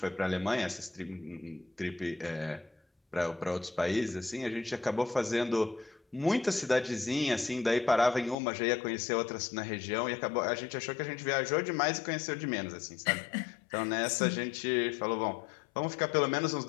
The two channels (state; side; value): drops out; right; at 8.3 s